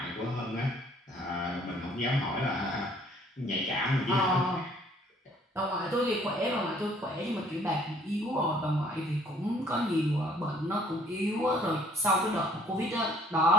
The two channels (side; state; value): both; normal; correlation 0.59